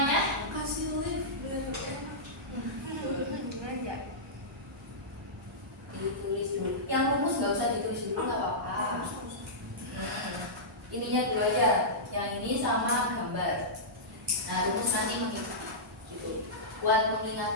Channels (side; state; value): both; normal; correlation -0.15